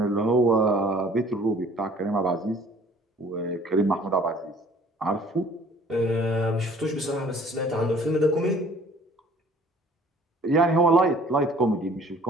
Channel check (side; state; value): both; normal; correlation 0.53